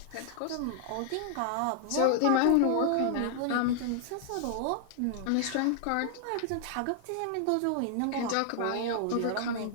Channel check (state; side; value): different; both; correlation -0.01